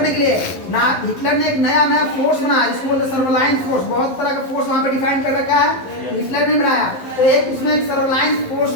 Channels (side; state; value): right; late; 11 ms